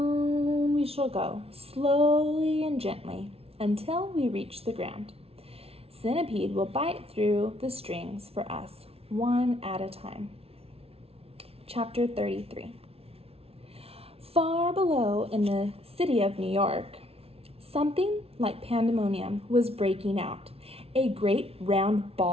we shall go, slowly and gently, until we reach the ground. Centipede will bite through the strings for us, one at a time. Chapter 33. Far below in the city of New York, something like pandemonium was breaking out. A great round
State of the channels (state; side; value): late; left; 0.29 ms